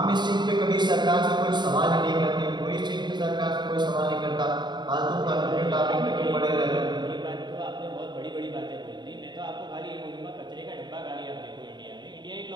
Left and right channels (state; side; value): late; left; 0.21 ms